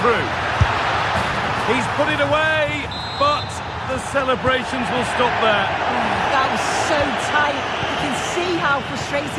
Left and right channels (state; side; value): identical; both; correlation 1.00